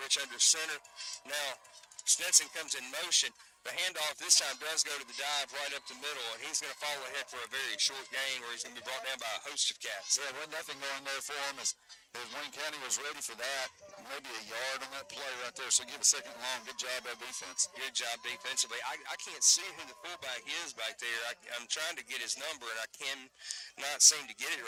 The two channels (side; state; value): both; identical; correlation 1.00